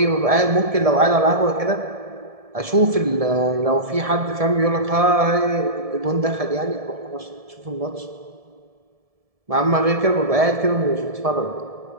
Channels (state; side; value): late; left; 1.7 ms